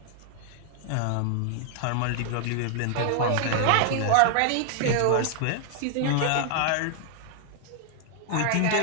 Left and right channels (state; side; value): different; both; correlation 0.00